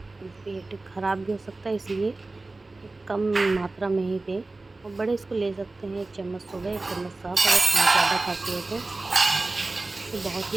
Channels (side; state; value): left; quieter; 3.3 dB